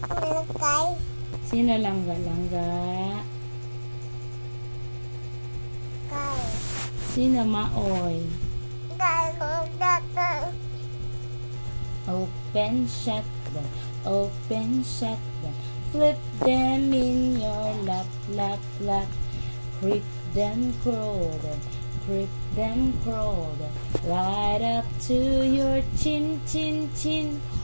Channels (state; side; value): inverted; both; correlation -1.00